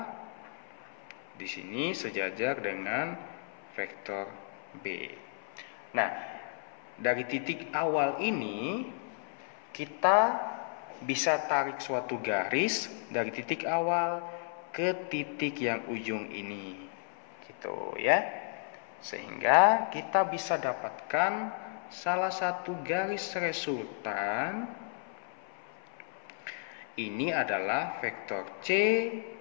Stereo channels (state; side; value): silent; right; 56 dB below the other